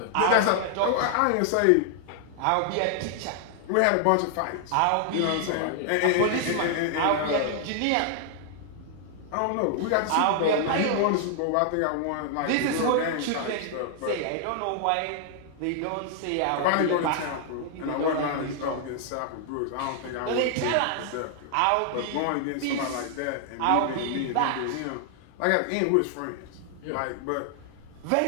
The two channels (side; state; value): both; different; correlation 0.00